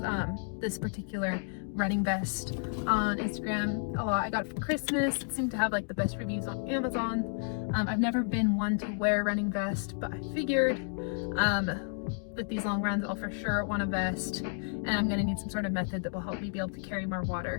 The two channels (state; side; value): silent; right; 57 dB below the other